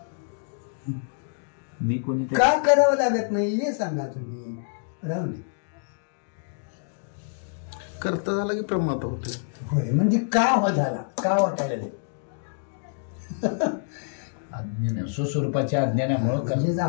मी कोणी का करावं लागत नाही हे सांगा तुम्ही. राहू नये. करता झाला की प्रमाद होते. होय म्हणजे का हो झाला का वाटायला नाही. अज्ञान स्वस्वरूपाच्या अज्ञानामुळं म्हणजे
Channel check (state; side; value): silent; right; digital silence